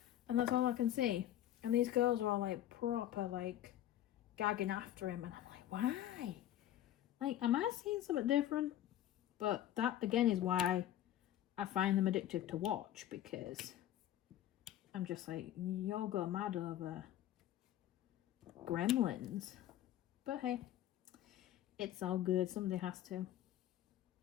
and that's all I can see. And these girls are all like proper like gagging after him, and I'm like, why? Like, am I seeing something different? But that again is why I find them addictive to watch, because I'm just like, y'all go mad over gremlins. But hey, it's all good. Somebody has to.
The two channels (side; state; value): right; quieter; 12.4 dB